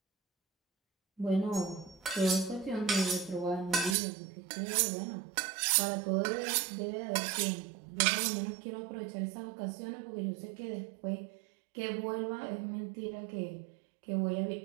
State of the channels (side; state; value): left; drops out; at 4.0 s